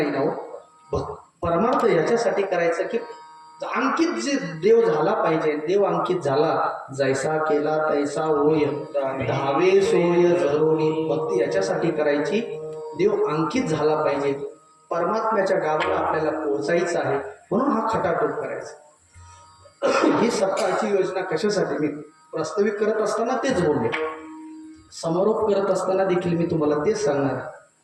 ना हो. परमार्थ याच्यासाठी करायचं की अंकित जे देव झाला पाहिजे. देव अंकित झाला जैसा केला तैसा होय धावे सोय जरोनी. भक्ती याच्यासाठी करायची देव अंकित झाला पाहिजे. परमात्म्याच्या गावाला आपल्याला पोहोचायचं आहे म्हणून हा खटाटोप करायचा. ही सप्ताहाची योजना कशासाठी मी प्रस्तावित करत असताना तेच बोलले. समारोप करत असताना देखील मी तुम्हाला तेच सांगणार.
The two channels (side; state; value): both; identical; correlation 1.00